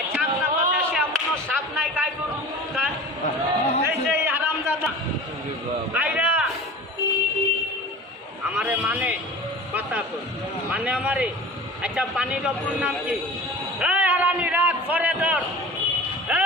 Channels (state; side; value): normal; both; correlation 0.38